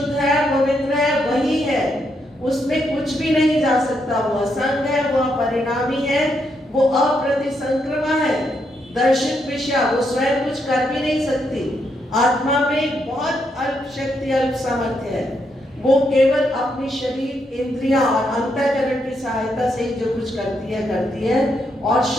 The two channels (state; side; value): normal; both; correlation 0.78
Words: है, पवित्र है, वही है, उसमें कुछ भी नहीं जा सकता। वो असंग है, वो अपरिणामी है, वो अप्रतिसंक्रमा है, दर्शित विषय, वो स्वयं कुछ कर भी नहीं सकती। आत्मा में बहुत अल्प शक्ति, अल्प सामर्थ्य है। वो केवल अपनी शरीर, इंद्रियां और अंतःकरण की सहायता से ही जो कुछ करती है। और